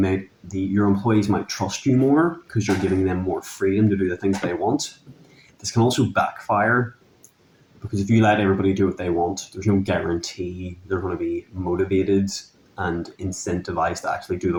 your employees might trust you more because you're giving them more freedom to do the things they want. This can also backfire because if you let everybody do what they want, there's no guarantee they're going to be motivated and incentivized to actually do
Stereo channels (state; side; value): identical; both; correlation 1.00